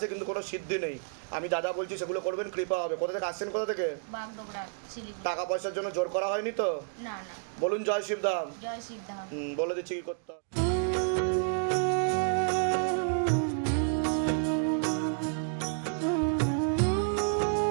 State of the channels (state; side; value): silent; left; digital silence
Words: কিন্তু কোনো সিদ্ধি নেই। আমি যা যা বলছি সেগুলো করবেন, কৃপা হবে। কোথা থেকে আসছেন, কোথা থেকে? বাগডোগরা, শিলিগুড়ি। টাকা পয়সার জন্য জোর করা হয়নি তো? না না। বলুন জয় শিবধাম। জয় শিবধাম। বলে দিচ্ছি কি করতে হবে।